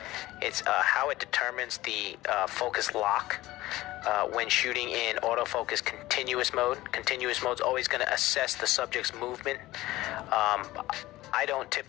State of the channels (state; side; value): quieter; right; 17.4 dB